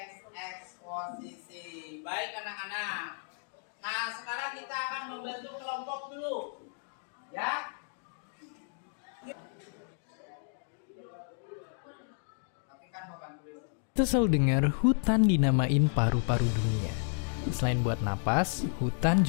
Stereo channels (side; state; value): right; silent; 56 dB below the other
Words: eksposisi. Baik anak-anak. Nah, sekarang kita akan membentuk kelompok dulu. Ya. Kita selalu dengar hutan dinamain paru-paru dunia. Selain buat napas, hutan